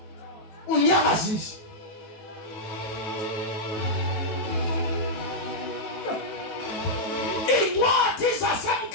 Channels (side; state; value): right; late; 19 ms